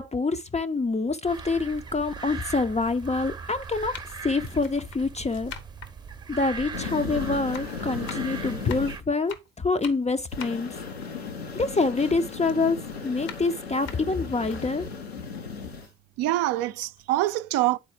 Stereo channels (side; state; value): both; normal; correlation 0.45